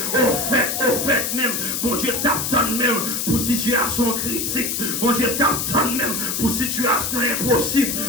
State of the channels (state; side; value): noise; left; hiss, 1 dB below the sound